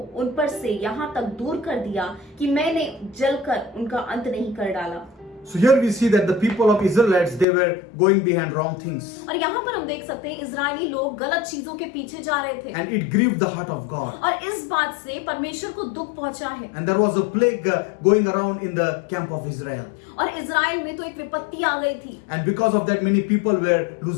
उन पर से यहाँ तक दूर कर दिया कि मैंने जलकर उनका अंत नहीं कर डाला। So here we see that the people of Israelites, they were going behind wrong things. और यहाँ पर हम देख सकते हैं इजरायली लोग गलत चीजों के पीछे जा रहे थे। And it grieved the heart of God. और इस बात से परमेश्वर को दुख पहुंचा है। And there was a plague going around in the camp of Israel. और इजराइल में तो एक विपत्ति आ गई थी। And because of that, many people were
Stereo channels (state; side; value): drops out; right; at 7.5 s